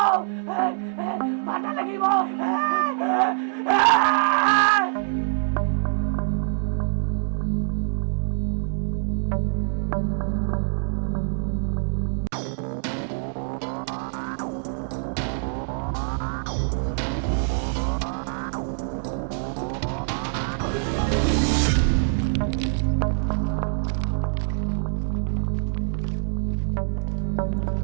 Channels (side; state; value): left; silent; digital silence